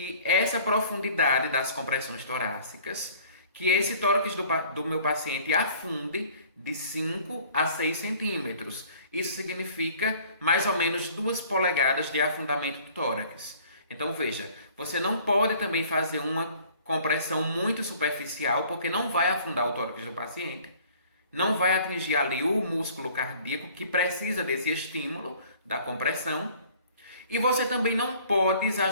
essa profundidade das compressões torácicas, que esse tórax do meu paciente afunde de 5 a 6 centímetros. Isso significa mais ou menos 2 polegadas de afundamento do tórax. Então veja, você não pode também fazer uma compressão muito superficial, porque não vai afundar o tórax do paciente, não vai atingir ali o músculo cardíaco que precisa desse estímulo da compressão. E você também não pode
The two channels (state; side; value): inverted; both; correlation -0.52